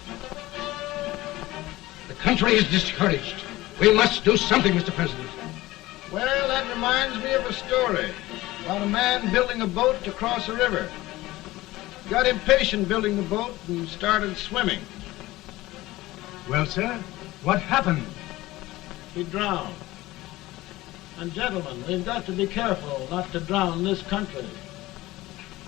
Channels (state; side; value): quieter; right; 18.1 dB